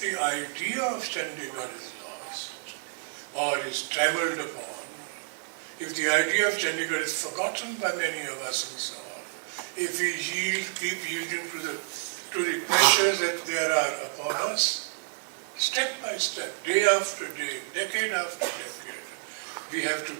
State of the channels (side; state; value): left; silent; digital silence